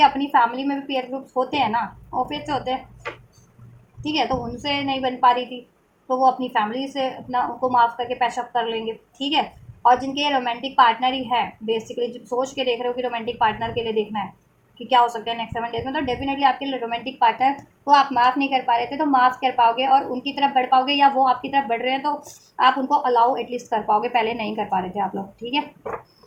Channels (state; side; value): identical; both; correlation 1.00